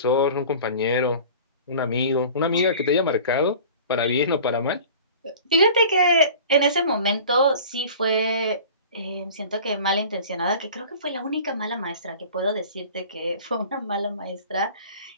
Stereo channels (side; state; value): both; inverted; correlation -0.42